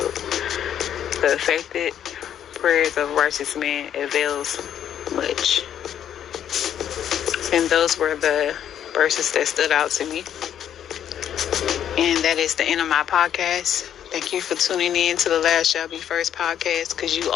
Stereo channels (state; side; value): quieter; right; 9.9 dB